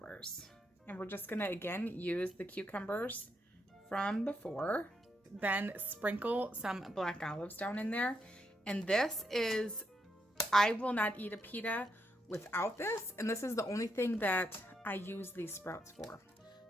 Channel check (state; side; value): normal; both; correlation 0.80